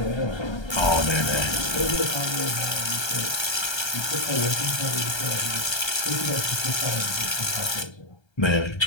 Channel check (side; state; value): right; late; 1.3 ms